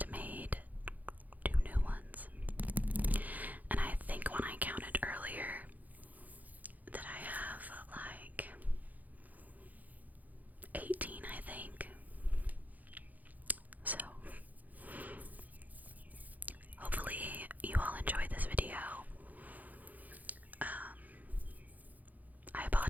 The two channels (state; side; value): late; left; 0.081 ms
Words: made 2 new ones. And I think when I counted earlier that I have like 18, I think. So hopefully you all enjoyed this video. I